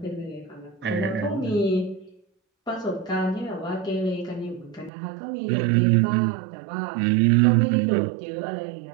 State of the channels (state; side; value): drops out; left; at 4.9 s